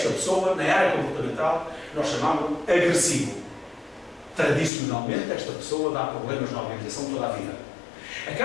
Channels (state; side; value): drops out; right; at 4.7 s